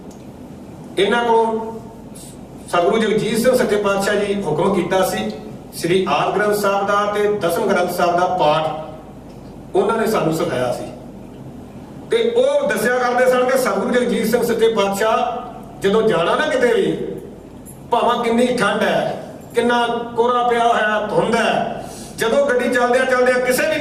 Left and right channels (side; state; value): both; identical; correlation 1.00